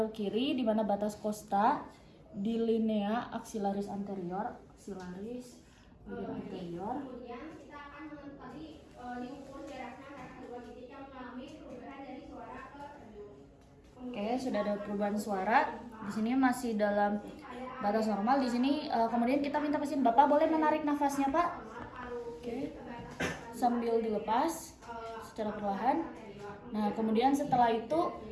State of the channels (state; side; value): identical; both; correlation 1.00